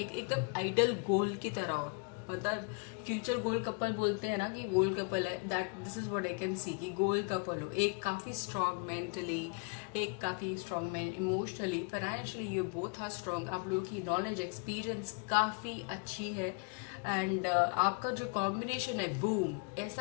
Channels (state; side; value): quieter; right; 34.0 dB